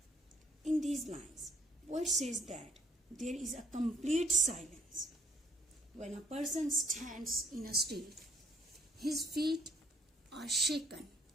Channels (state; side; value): normal; both; correlation 0.63